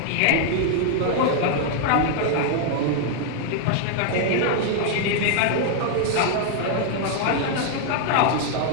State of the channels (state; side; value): different; both; correlation 0.00